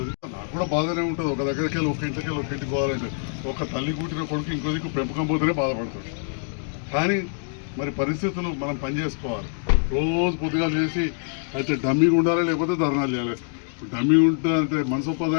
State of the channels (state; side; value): silent; right; digital silence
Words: నాకు కూడా బాధనే ఉంటుంది. ఒక దగ్గరికి వెళ్ళి ఒక ఇంటికి వెళ్ళి ఒక ఇంటికి పోవాలంటే ఒక తల్లి కూటిన కొడుకు ఇంకో దిక్కు పెంపకం పోతేనే బాధపడుతుంది. కానీ మరి పరిస్థితులు మనం పనిచేసుకోవాలి. రోజు పొద్దుగా చేసి అయితే డమ్మీగా ఉండాలి, లేకపోతే ధర్నాలు చేయాలి. డమ్మీ ఉంటుందంటే